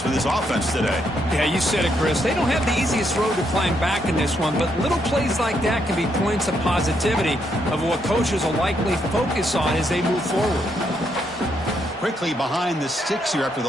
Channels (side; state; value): both; normal; correlation 0.76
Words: for this offense today. Yeah, you said it, Chris. They don't have the easiest road to climb back in this one, but little plays like that can be points of positivity of what coaches will likely focus on as they move forward. Quickly behind the sticks here after the